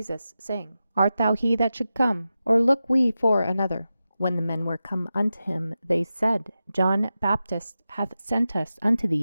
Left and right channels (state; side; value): inverted; both; correlation -0.92